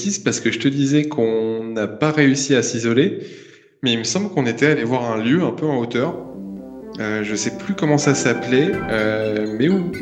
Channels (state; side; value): identical; both; correlation 1.00